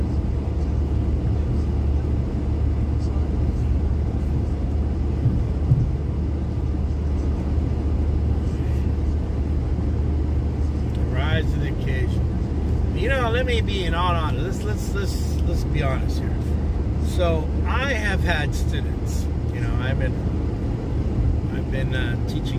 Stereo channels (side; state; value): both; identical; correlation 1.00